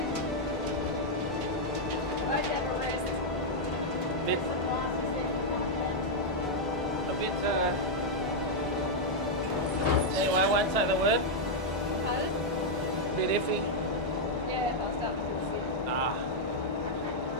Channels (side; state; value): both; normal; correlation -0.03